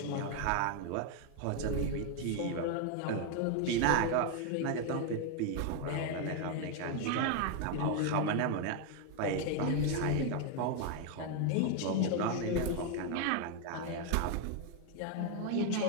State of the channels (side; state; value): both; different; correlation 0.01